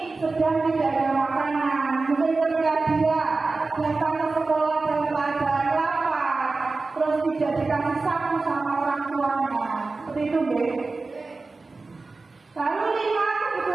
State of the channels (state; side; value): quieter; left; 3.7 dB